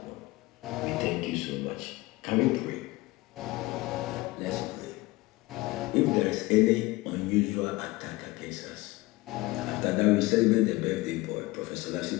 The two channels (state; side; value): quieter; right; 20.5 dB